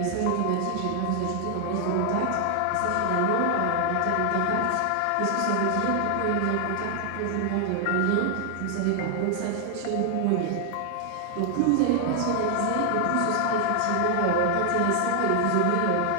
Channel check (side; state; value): both; different; correlation 0.00